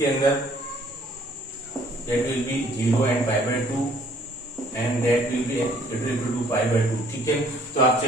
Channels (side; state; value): both; normal; correlation 0.59